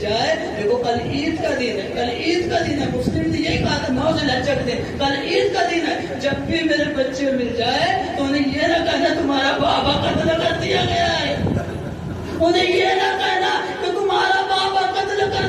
دیکھو کل عید کا دن ہے, کل عید کا دن ہے, مسلم نے یہی کہا تھا 9 ذوالحجہ کے دن, کل عید کا دن ہے, جب بھی میرے بچے مل جائے تو انہیں یہ نہ کہنا تمہارا بابا قتل کر دیا گیا ہے, انہیں یہ نہ کہنا کہ تمہارا بابا قتل کر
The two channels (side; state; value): both; identical; correlation 1.00